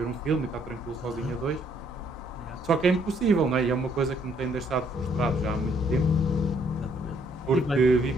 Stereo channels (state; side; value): normal; both; correlation 0.67